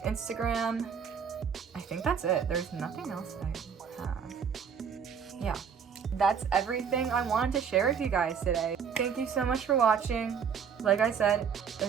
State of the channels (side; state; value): left; quieter; 7.0 dB